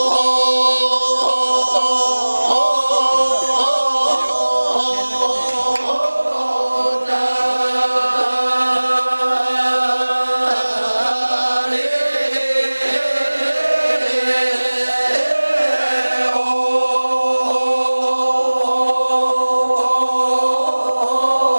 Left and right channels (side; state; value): both; inverted; correlation -1.00